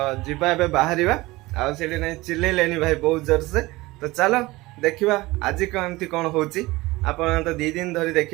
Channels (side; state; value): left; quieter; 20.4 dB